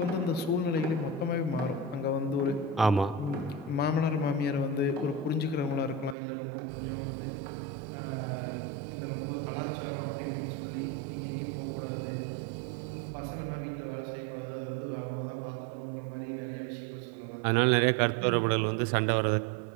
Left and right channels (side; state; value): left; drops out; at 6.2 s